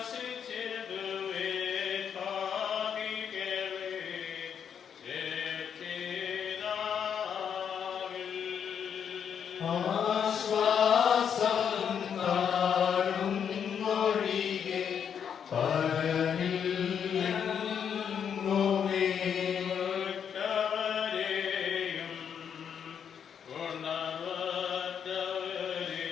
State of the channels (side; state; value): right; quieter; 7.8 dB